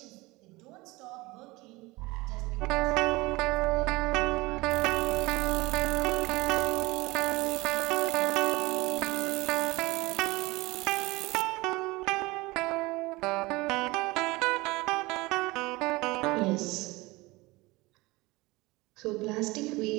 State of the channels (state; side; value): quieter; left; 22.1 dB